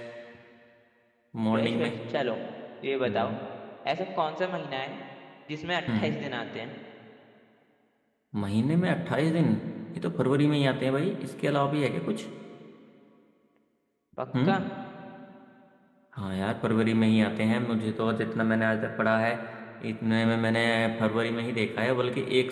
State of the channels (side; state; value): both; identical; correlation 1.00